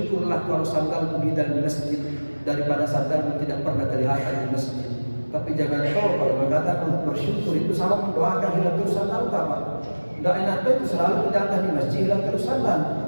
kalau sandalmu di dalam masjid daripada sandalmu tidak pernah kelihatan di masjid. Tapi jangan tahu kalau mengatakan bersyukur itu sama mendoakan hilang terus sandal kapan? Tidak enak itu selalu datang di masjid hilang terus sandal.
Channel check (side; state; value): both; inverted; correlation -1.00